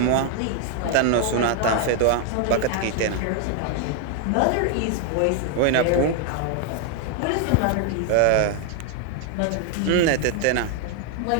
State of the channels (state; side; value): different; both; correlation 0.00